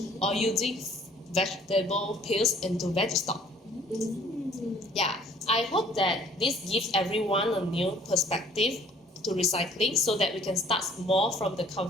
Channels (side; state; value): both; normal; correlation 0.56